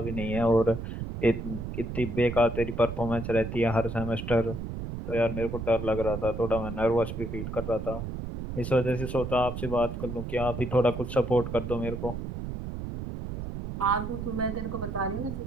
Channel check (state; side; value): noise; right; rumble, 6 dB below the sound